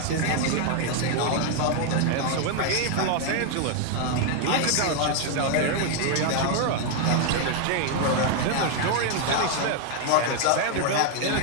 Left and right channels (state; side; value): different; both; correlation 0.01